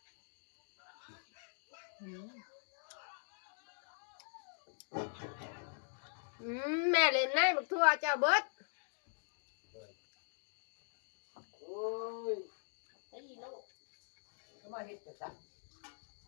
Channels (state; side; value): silent; right; digital silence